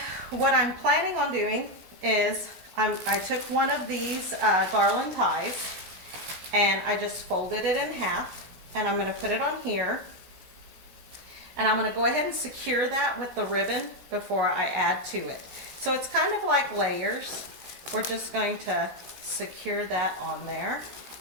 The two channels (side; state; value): left; late; 17 ms